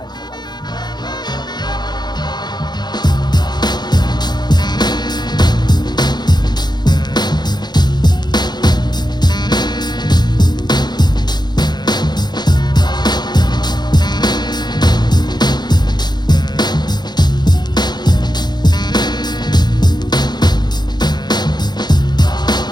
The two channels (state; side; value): late; right; 0.21 ms